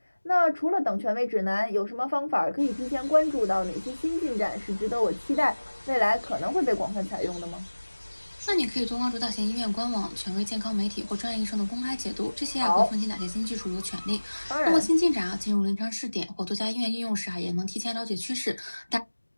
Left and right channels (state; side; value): inverted; both; correlation -1.00